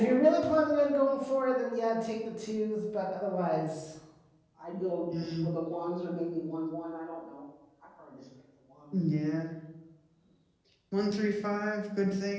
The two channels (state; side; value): identical; both; correlation 1.00